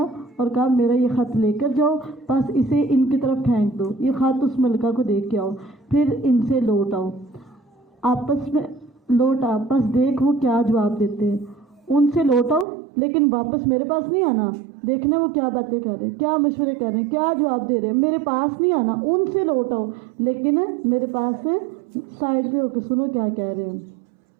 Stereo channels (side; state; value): left; drops out; at 12.7 s